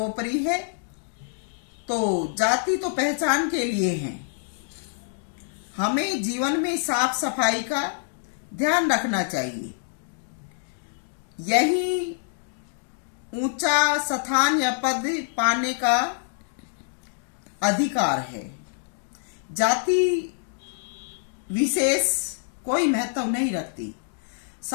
है। तो जाति तो पहचान के लिए है, हमें जीवन में साफ सफाई का ध्यान रखना चाहिए। यही ऊंचा स्थान या पद पाने का अधिकार है। जाति विशेष कोई महत्व नहीं रखती।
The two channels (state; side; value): silent; right; digital silence